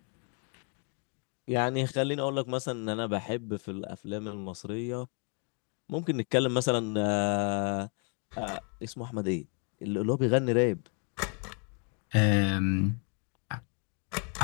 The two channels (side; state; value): right; quieter; 39.2 dB